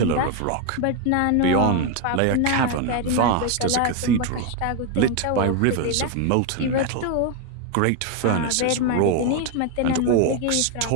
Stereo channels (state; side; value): different; both; correlation 0.01